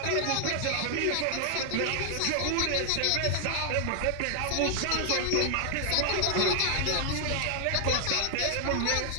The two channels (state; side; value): different; both; correlation 0.00